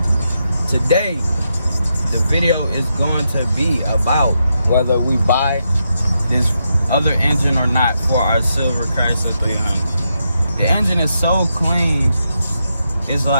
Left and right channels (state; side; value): inverted; both; correlation -0.83